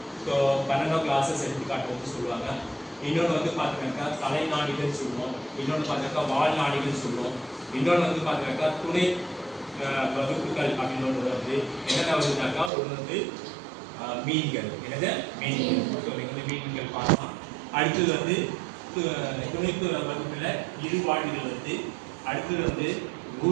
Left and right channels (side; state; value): left; drops out; at 12.7 s